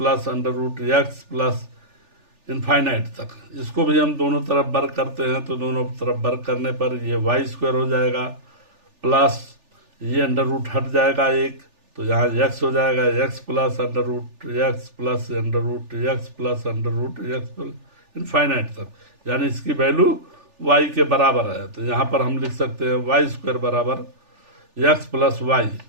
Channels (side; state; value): left; late; 3.4 ms